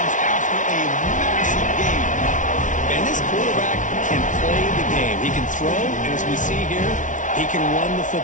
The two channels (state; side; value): late; right; 0.37 ms